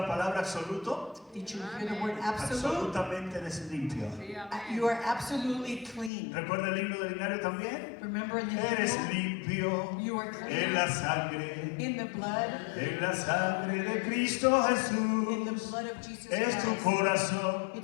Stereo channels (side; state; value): right; drops out; at 6.1 s